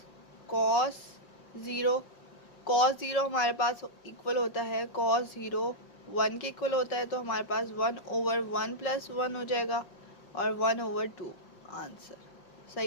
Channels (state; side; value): late; right; 5.3 ms